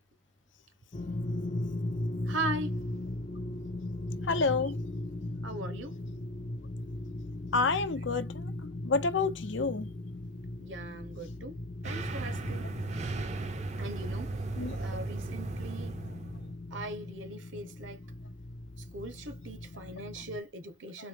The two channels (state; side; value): normal; both; correlation 0.35